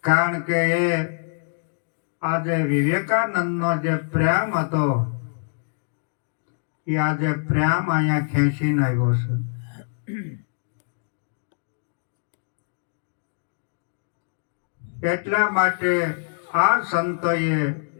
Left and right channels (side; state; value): right; silent; digital silence